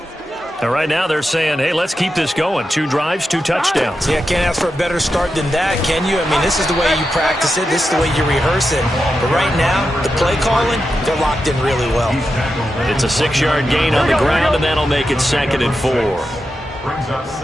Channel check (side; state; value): both; normal; correlation 0.89